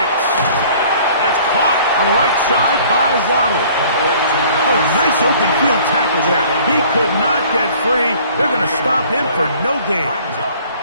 That's caught on the right side by Waddle. Oh, a nice open field tackle there. He could not get free. They're going to stop him for no gain.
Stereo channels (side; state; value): both; inverted; correlation -0.52